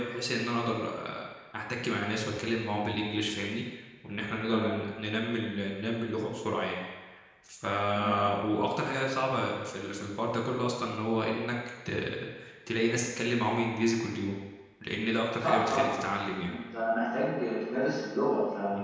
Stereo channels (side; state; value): both; identical; correlation 1.00